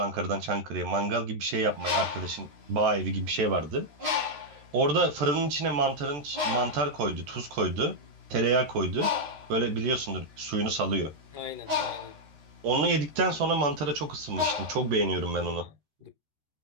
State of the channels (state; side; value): late; left; 14 ms